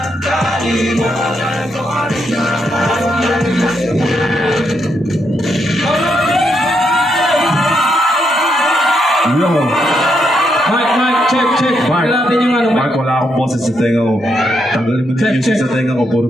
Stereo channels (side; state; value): both; normal; correlation 0.79